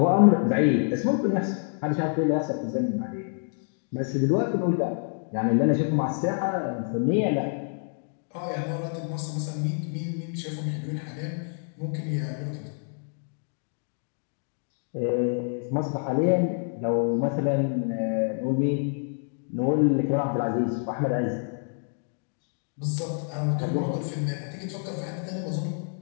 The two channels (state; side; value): silent; right; 60 dB below the other